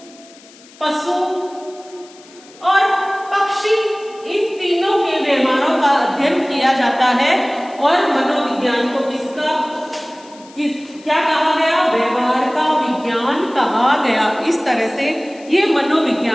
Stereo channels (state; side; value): noise; left; hiss, 24 dB below the sound